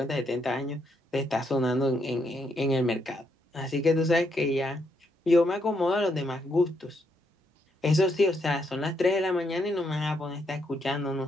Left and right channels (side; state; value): both; normal; correlation 0.77